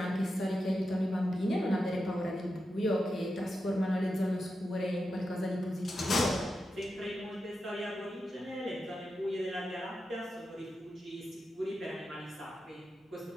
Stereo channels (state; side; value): normal; both; correlation 0.89